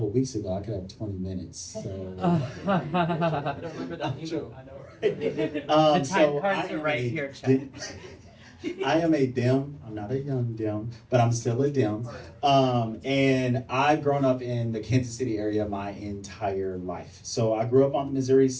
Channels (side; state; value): both; identical; correlation 1.00